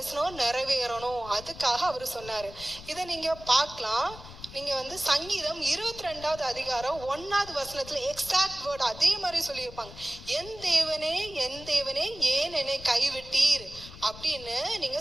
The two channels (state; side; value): noise; left; rumble, 16 dB below the sound